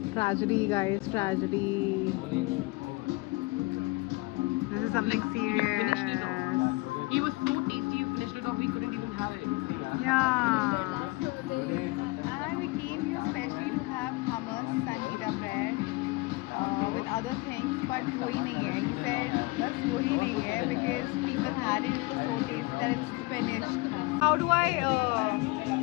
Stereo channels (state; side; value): quieter; right; 23.0 dB